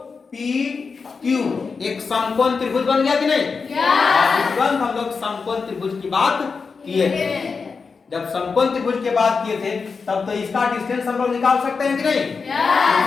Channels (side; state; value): right; quieter; 5.0 dB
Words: पी क्यू एक समकोण त्रिभुज बन गया कि नहीं। तुरंत हम लोग समकोण त्रिभुज की बात किए थे। जब समकोण त्रिभुज की बात किए थे तब तो इसका डिस्टेंस हम लोग निकाल सकते हैं कि नहीं।